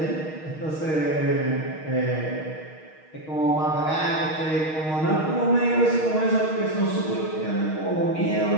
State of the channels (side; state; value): right; late; 6.4 ms